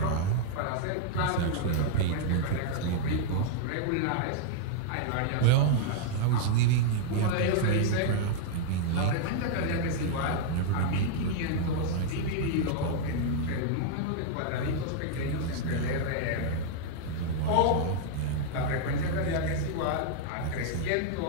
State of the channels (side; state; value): both; different; correlation -0.01